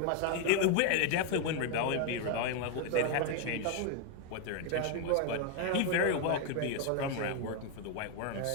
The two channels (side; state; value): both; different; correlation 0.01